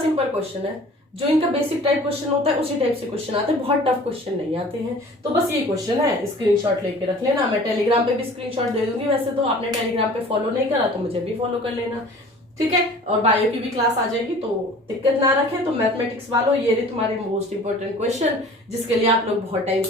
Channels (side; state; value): both; normal; correlation 0.46